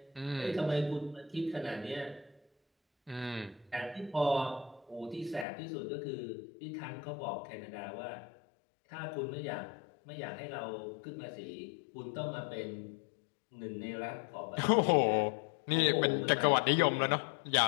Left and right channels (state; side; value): drops out; right; at 5.5 s